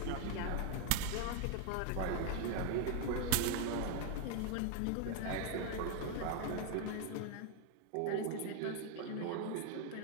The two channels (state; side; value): different; both; correlation 0.01